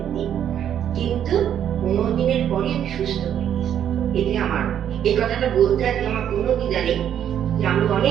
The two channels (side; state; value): left; quieter; 9.7 dB